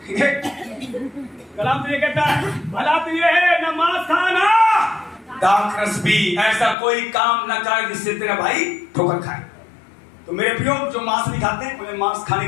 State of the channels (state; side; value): drops out; right; at 6.8 s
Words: ठीक है। कलाम तो ये कहता है, भला तो ये है न मांस खाना, दाखरस भी, ऐसा कोई काम न कर जिससे तेरा भाई ठोकर खाए। तो मेरे प्रियो, जो मांस नहीं खाते उन्हें मांस खाने